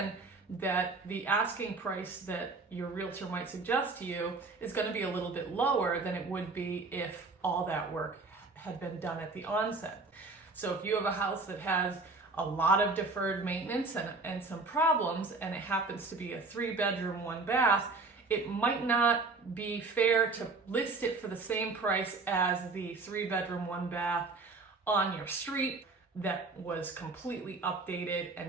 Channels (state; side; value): quieter; left; 3.8 dB